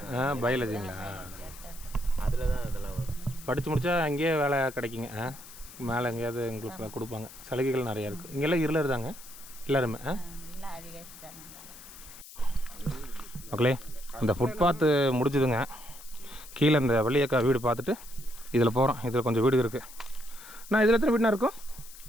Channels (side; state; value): left; noise; hiss, 17 dB below the sound